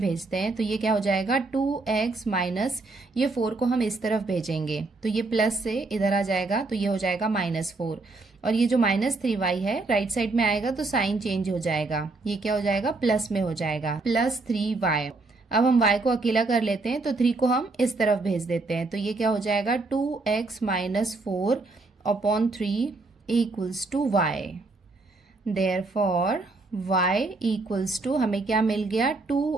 हैं। तो ये क्या हो जाएगा 2x माइनस ये 4 को हम इस तरफ भेजेंगे तो ये प्लस से इधर आ जाएगा, तो ये हो जाएगा -4 और ये जो -3y है राइट साइड में आएगा तो साइन चेंज हो जाएगा, ये क्या हो जाएगा प्लस में हो जाएगा +3y। अब हम y को अकेला कर लेते हैं तो 3 को हम इस तरफ भेज देते हैं तो ये क्या हो जाएगा 2x minus 4 upon 3 equals to y। Therefore y equals to हमें क्या मिल गया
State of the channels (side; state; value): left; quieter; 3.5 dB